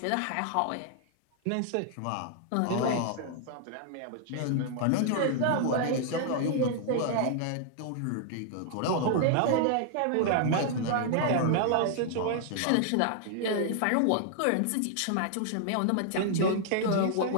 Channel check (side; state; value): both; different; correlation 0.00